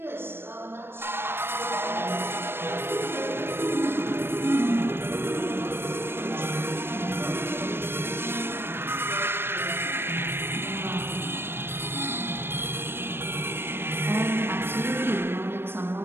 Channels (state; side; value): late; left; 0.11 ms